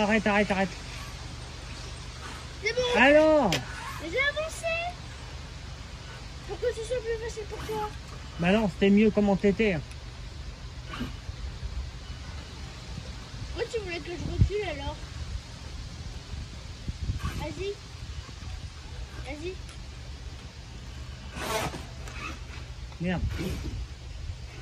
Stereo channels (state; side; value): identical; both; correlation 1.00